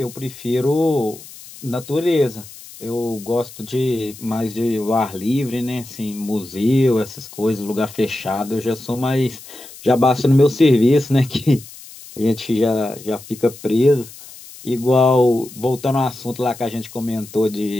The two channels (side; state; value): left; noise; hiss, 18 dB below the sound